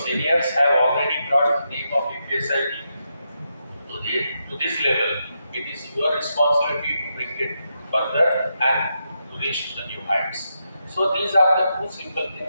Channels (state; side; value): inverted; both; correlation -0.84